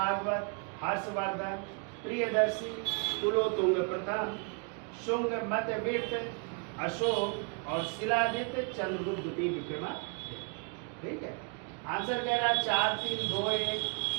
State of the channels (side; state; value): left; quieter; 36.7 dB